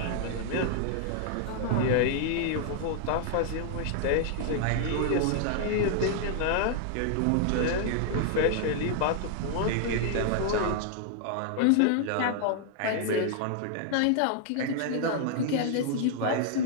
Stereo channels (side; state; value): both; different; correlation 0.00